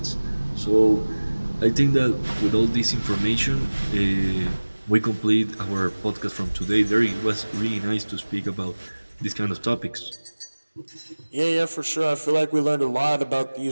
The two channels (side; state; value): both; inverted; correlation -1.00